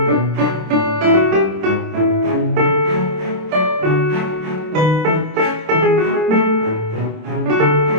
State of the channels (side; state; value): left; late; 26 ms